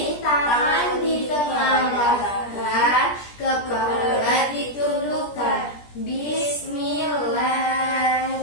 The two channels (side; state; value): right; late; 17 ms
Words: tangan di tengah dahan, kepala ditundukkan.